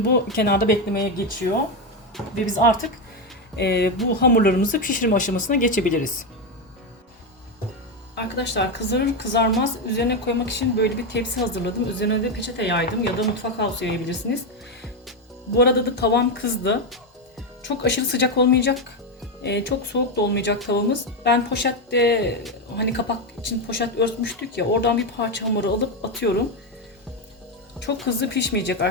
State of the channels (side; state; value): both; normal; correlation 0.08